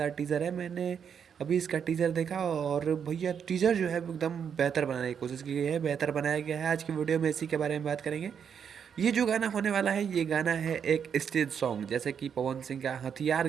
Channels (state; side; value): quieter; left; 7.5 dB